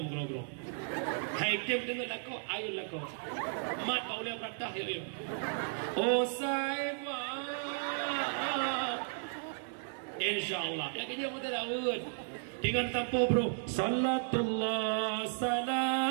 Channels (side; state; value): left; silent; digital silence